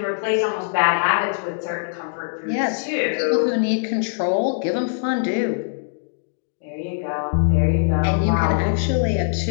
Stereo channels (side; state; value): right; silent; digital silence